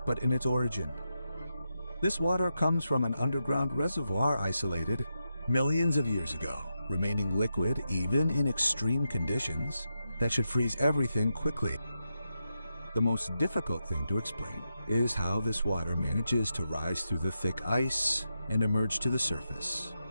but in its origin. This water comes from an underground reservoir isolated millions of years ago, remaining liquid even in extreme conditions, that should freeze everything quickly. The most difficult thing to explain is how this water manages to rise through the thick ice and emerge to the surface.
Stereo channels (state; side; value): inverted; both; correlation -0.87